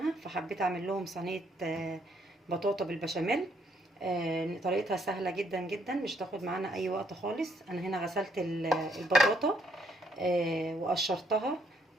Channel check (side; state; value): both; normal; correlation 0.71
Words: فحبيت اعمل لهم صينية بطاطا بالبشاميل. طريقتها سهلة جدا جدا، مش تاخد معانا اي وقت خالص. انا هنا غسلت البطاطا وقشرتها